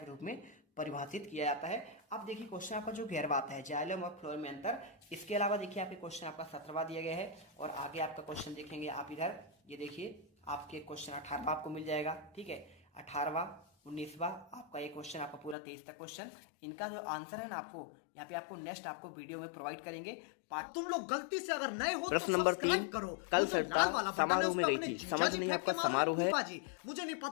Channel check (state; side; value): drops out; right; at 15.6 s